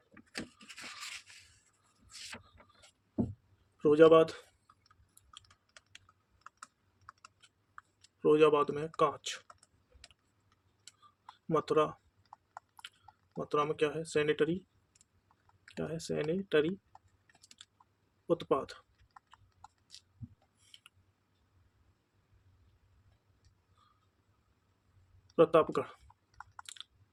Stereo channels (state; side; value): identical; both; correlation 1.00